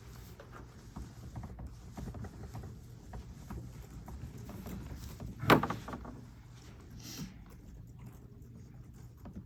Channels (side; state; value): both; identical; correlation 1.00